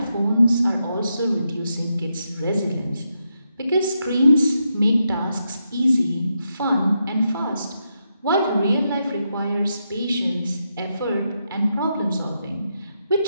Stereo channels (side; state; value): both; inverted; correlation -0.83